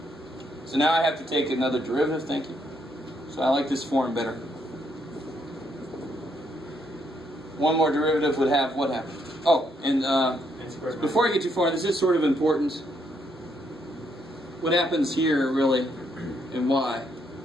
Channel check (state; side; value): normal; both; correlation 0.74